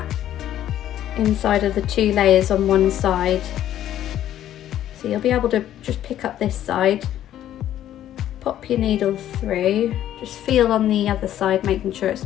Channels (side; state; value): right; quieter; 11.8 dB